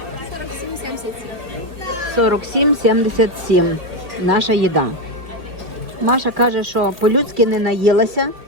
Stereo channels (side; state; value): left; late; 2.0 ms